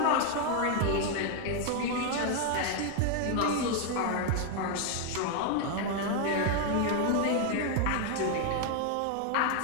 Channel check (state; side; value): different; both; correlation 0.01